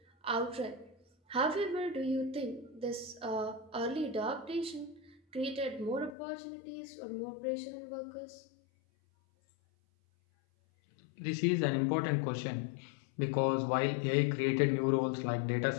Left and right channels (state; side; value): drops out; right; at 6.1 s